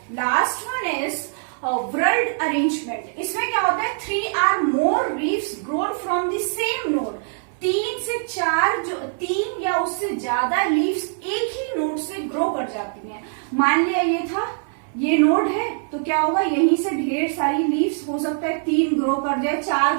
last one is whorled arrangement. इसमें क्या होता है, 3 or more leaves grown from the same node। 3 से 4 जो 3 या उससे ज्यादा लीव्स एक ही नोड से ग्रो कर जाती हैं। मान लिया ये था, ये नोड है, तो क्या होगा, यहीं से ढेर सारी लीव्स हो सकता है 3 ग्रो कर जाए, 4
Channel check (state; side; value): silent; left; digital silence